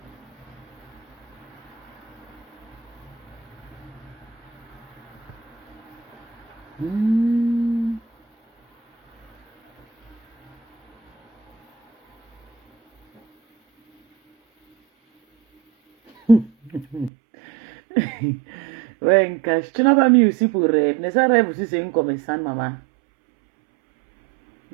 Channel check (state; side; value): drops out; left; at 17.1 s